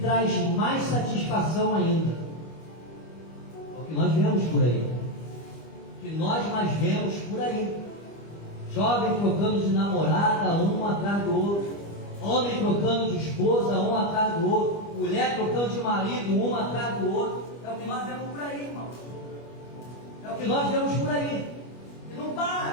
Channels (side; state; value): right; late; 25 ms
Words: mais satisfação ainda. É o que nós vemos por aí. O que nós mais vemos por aí. Jovem trocando de namorada, um atrás do outro. Homem trocando de esposa, um atrás do outro. Mulher trocando de marido, um atrás do outro. É o que nós vemos por aí, irmão. É o que nós vemos por aí. E não